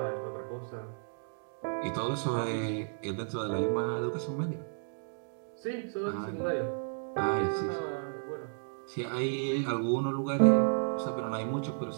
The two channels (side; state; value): left; silent; digital silence